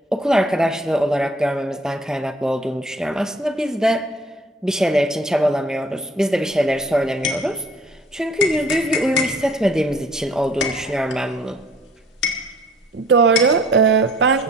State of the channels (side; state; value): both; normal; correlation 0.55